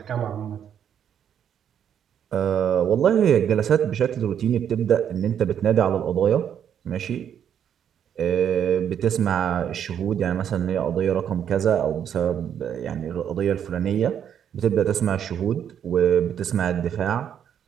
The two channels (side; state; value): left; quieter; 8.9 dB